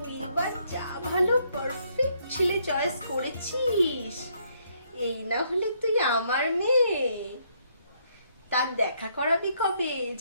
এবার যা ভালো পারফেক্ট ছেলে চয়েস করেছিস। এই না হলে তুই আমার মেয়ে। তার দেখা করাবি কবে?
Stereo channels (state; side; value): inverted; both; correlation -0.71